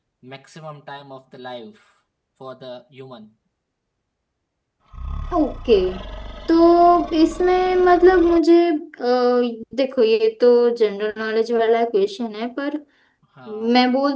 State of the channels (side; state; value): both; identical; correlation 1.00